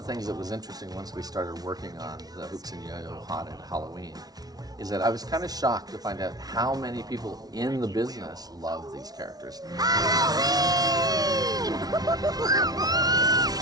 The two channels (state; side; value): late; left; 0.19 ms